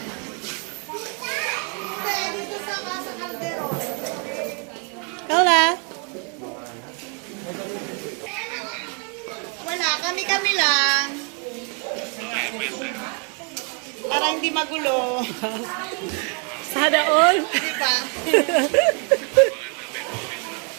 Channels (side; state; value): left; quieter; 37.9 dB